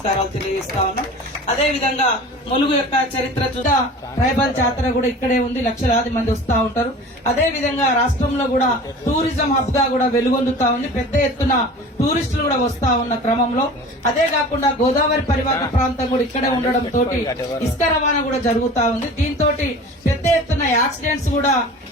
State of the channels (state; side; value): normal; both; correlation 0.39